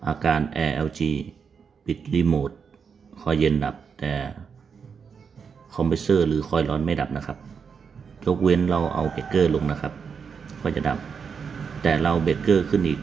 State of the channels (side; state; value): left; quieter; 6.2 dB